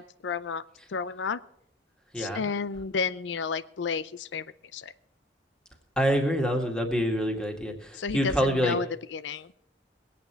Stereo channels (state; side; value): normal; both; correlation 0.48